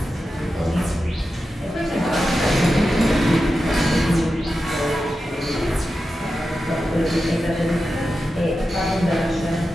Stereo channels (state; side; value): normal; both; correlation 0.91